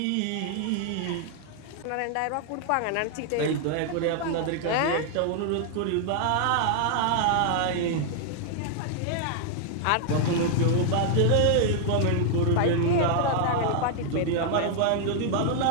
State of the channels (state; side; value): different; both; correlation 0.00